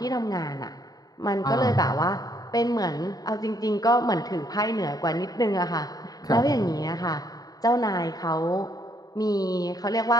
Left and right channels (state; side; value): late; right; 0.18 ms